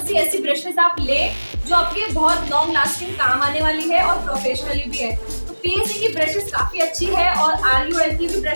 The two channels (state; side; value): inverted; both; correlation -1.00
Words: सी ऐसी ब्रशेस आप ले जो आपके बहुत लॉन्ग लास्टिंग काम आने वाली है और प्रोफेशनली भी है। तो पीएससी की ब्रशेस काफ़ी अच्छी है और RUL की भी